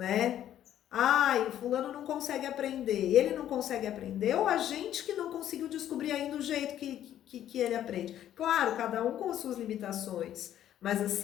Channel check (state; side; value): quieter; right; 11.3 dB